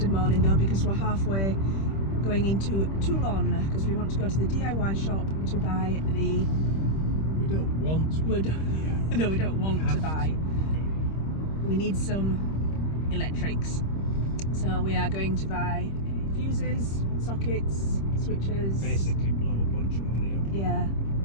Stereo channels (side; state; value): right; late; 26 ms